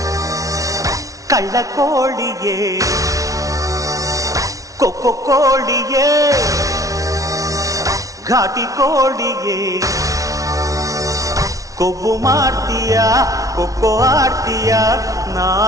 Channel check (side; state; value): left; late; 0.17 ms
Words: ಕಳ್ಳ ಕೋಳಿಯೇ ಕೊಕ್ಕೊ ಕೋಳಿಯೇ ಘಾಟಿ ಕೋಳಿಯೇ ಕೊಬ್ಬು ಮಾಡ್ತೀಯ ಕೊಕ್ಕೊ ಆಡ್ತೀಯ